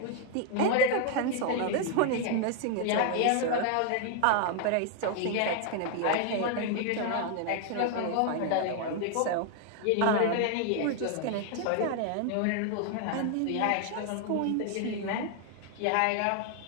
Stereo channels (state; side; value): different; both; correlation 0.00